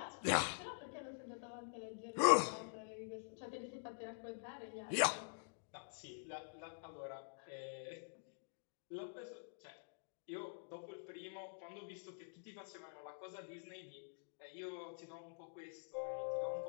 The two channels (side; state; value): right; silent; digital silence